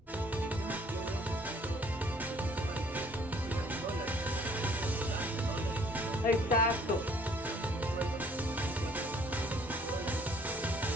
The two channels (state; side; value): normal; both; correlation 0.59